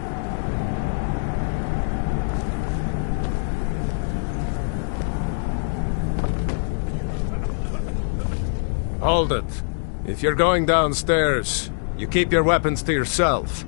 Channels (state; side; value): silent; right; digital silence